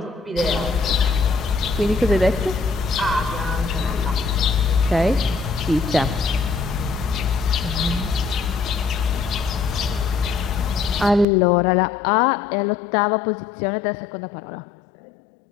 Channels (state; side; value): drops out; right; at 11.2 s